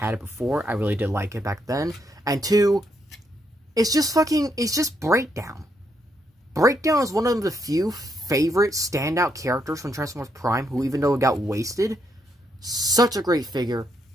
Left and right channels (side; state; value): both; normal; correlation 0.76